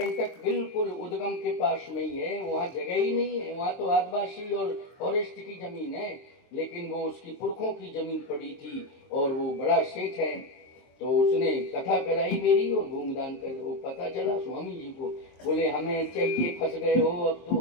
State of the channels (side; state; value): right; late; 22 ms